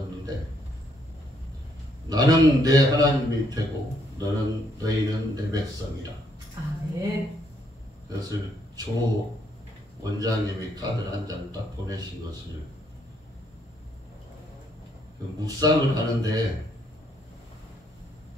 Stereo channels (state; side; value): normal; both; correlation 0.71